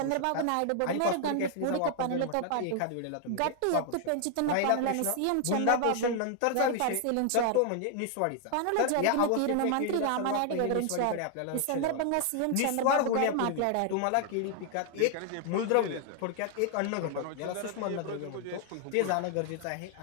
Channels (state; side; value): different; both; correlation 0.00